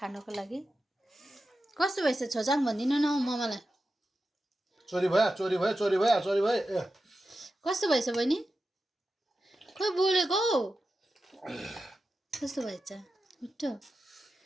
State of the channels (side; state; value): both; normal; correlation 0.91